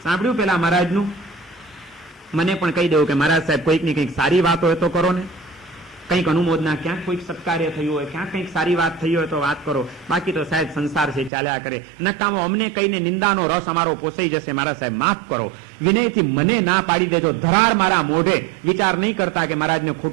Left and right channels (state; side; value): drops out; left; at 11.3 s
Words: સાંભળ્યું પેલા મહારાજનું? મને પણ કહી દેવું કે મહારાજ સાહેબ કોઈકની કંઈક સારી વાત હોય તો કરો ને, કંઈક અનુમોદના, ક્યાંક કોઈક સત્કાર્ય થયું હોય, ક્યાંક કંઈક સારી વાત થઈ હોય તો વાત કરો. બાકી તો સાહેબ સંસાર છે, ચાલ્યા કરે. નકામો અમને કહીને નિંદાનો રસ અમારો પોસાઈ જશે, મારા સાહેબ માફ કરો. વિનયથી મને ના પાડી દેજો, ધરાર મારા મોઢે. વિચાર નહીં કરતા કે મહારાજને